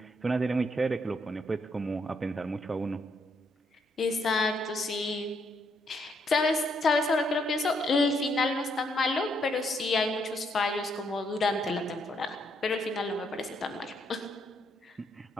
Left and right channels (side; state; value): both; normal; correlation 0.74